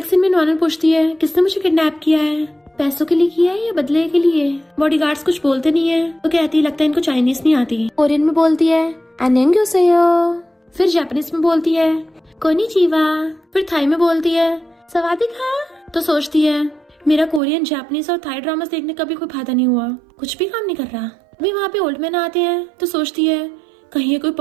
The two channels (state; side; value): drops out; left; at 17.4 s